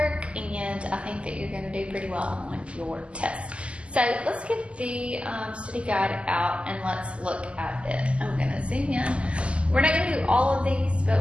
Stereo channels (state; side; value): late; left; 0.056 ms